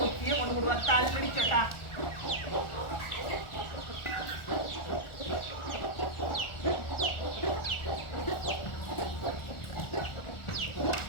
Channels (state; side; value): late; right; 1.4 ms